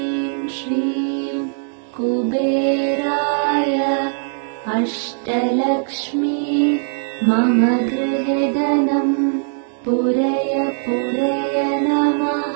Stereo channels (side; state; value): left; silent; digital silence